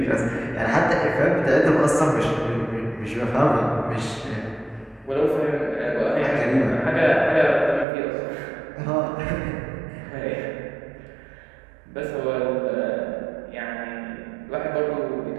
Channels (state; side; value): drops out; left; at 7.9 s